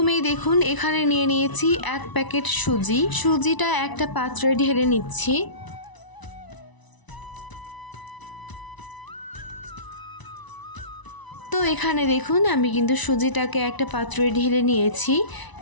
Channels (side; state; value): right; late; 1.0 ms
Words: দেখুন, এখানে নিয়ে নিয়েছি 1 প্যাকেট সুজি। সুজিটা একটা পাত্রে ঢেলে নিচ্ছি। তো এখানে দেখুন, আমি কিন্তু সুজিটাকে একটা পাত্রে ঢেলে নিয়েছি।